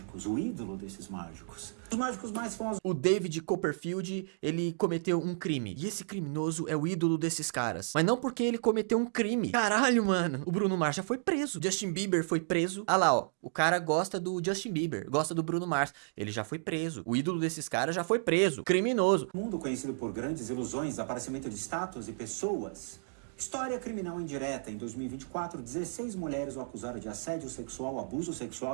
o ídolo desses mágicos. Os mágicos mais famosos... O David Copperfield, ele cometeu um crime. E esse criminoso é o ídolo desses caras. Mas não porque ele cometeu um crime. Caralho, mano. O Bruno Mars já foi preso. Justin Bieber foi preso. Ah lá, ó. O cara gosta do Justin Bieber, gosta do Bruno Mars. Ele já foi preso. O ídolo desses caras já foi preso. Criminoso. O mundo conhecido por grandes ilusões, aparecimento de estátuas e pessoas... História criminal indireta. Em 2024, 16 mulheres o acusaram de assédio sexual, abuso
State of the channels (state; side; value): silent; left; digital silence